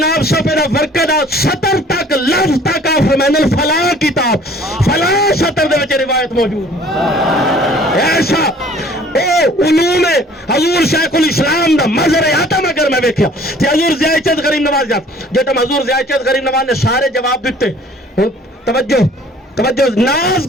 صفحے دا ورقہ دا سطر تک لفظ تک آپ فرمائیں فلاں کتاب فلاں سطر دے وچ روایت موجود ایسا علوم حضور شیخ الاسلام دا مظہر آتم اگر میں ویکھیا تے حضور ضیاء چند غریب نواز جب حضور ضیاء چند غریب نواز نے سارے جواب دیتے توجہ ناز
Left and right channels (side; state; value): both; normal; correlation 0.53